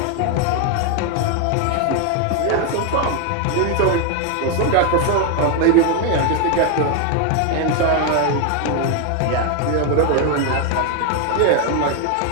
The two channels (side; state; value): both; different; correlation 0.01